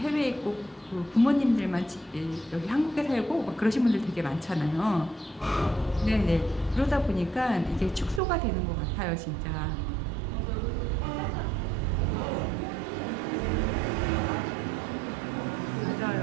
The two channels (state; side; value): drops out; left; at 8.2 s